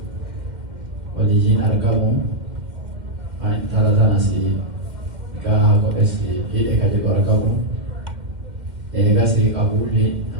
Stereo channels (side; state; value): left; late; 2.1 ms